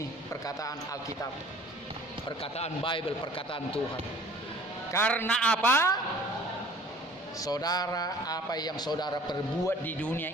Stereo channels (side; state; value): both; normal; correlation 0.50